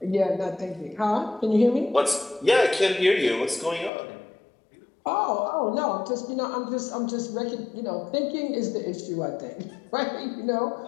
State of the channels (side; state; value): right; drops out; at 3.9 s